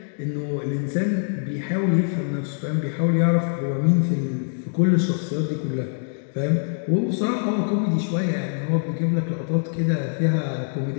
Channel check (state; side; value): silent; right; digital silence